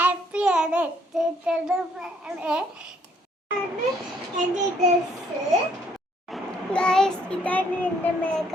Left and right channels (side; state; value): both; normal; correlation 0.66